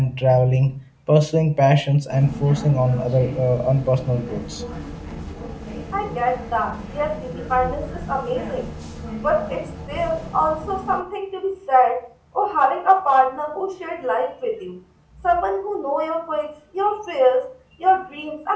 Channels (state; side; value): identical; both; correlation 1.00